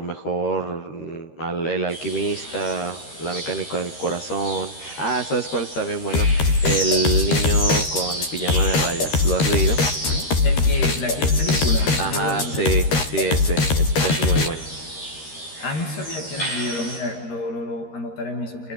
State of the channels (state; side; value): late; right; 13 ms